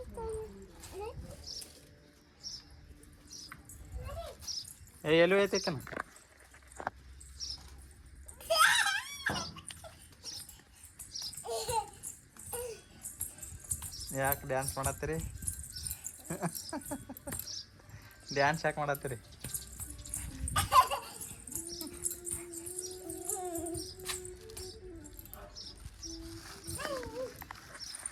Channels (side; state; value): both; identical; correlation 1.00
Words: ಎಲ್ಲಿ ಐತೈತನ ಯಾಕೆ ಡ್ಯಾನ್ಸ್ ಮಾಡತ್ತೀರಿ? ಡ್ಯಾನ್ಸ್ ಯಾಕೆ ಮಾಡತ್ತೀರಿ?